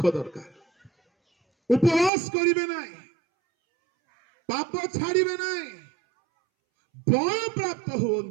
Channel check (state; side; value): drops out; left; at 2.1 s